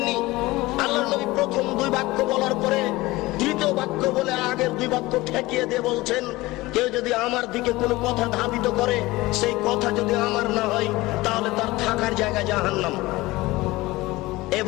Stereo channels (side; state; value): right; quieter; 19.9 dB